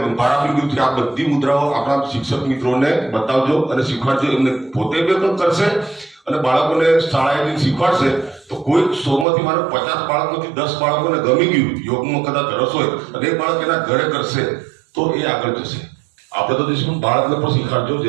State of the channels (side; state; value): left; drops out; at 9.2 s